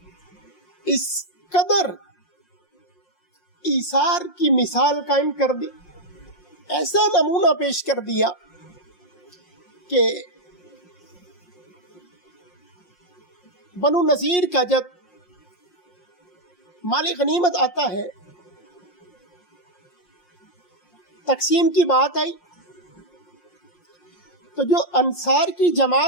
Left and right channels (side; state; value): right; late; 5.6 ms